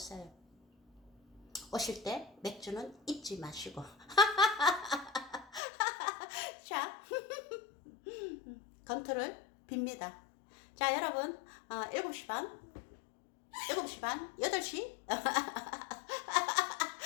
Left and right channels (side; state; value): right; drops out; at 5.6 s